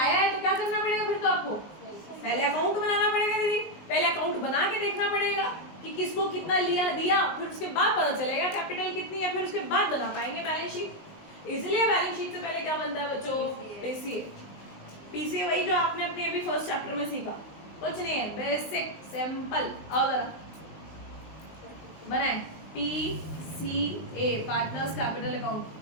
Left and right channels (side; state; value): right; late; 19 ms